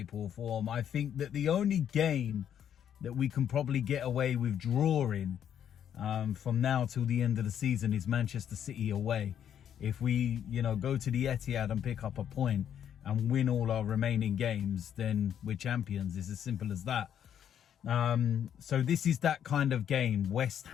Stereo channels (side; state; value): right; quieter; 9.3 dB